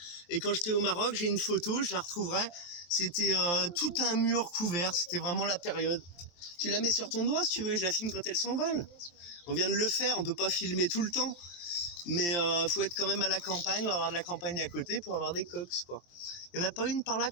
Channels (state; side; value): late; right; 23 ms